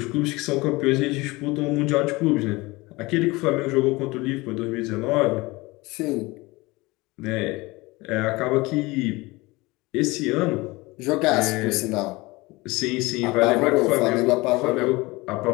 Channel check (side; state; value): right; quieter; 22.5 dB